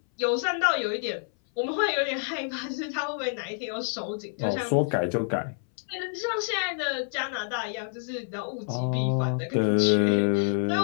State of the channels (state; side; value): silent; right; 58 dB below the other